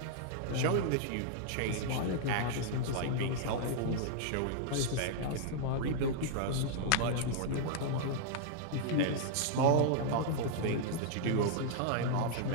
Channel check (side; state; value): both; different; correlation -0.01